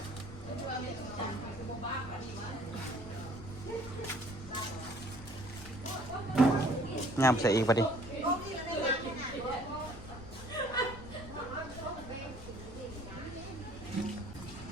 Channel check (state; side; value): noise; left; rumble, 15 dB below the sound